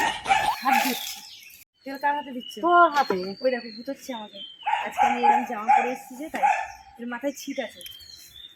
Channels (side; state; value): both; identical; correlation 1.00